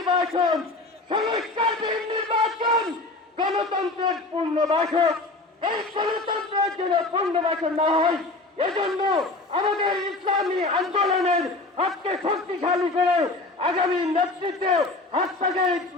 সংস্কারবিহীন নির্বাচন গণতন্ত্রের পূর্ণবাসক। এই গণতন্ত্রের জন্য পূর্ণবাসন না হয়, এজন্য আমাদের ইসলামী আন্দোলনের হাতকে শক্তিশালী করে আগামী নেতৃত্বে হাত থেকে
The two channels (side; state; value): right; quieter; 3.1 dB